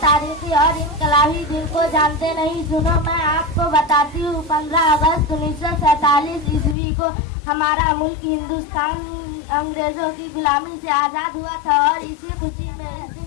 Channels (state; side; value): drops out; right; at 6.8 s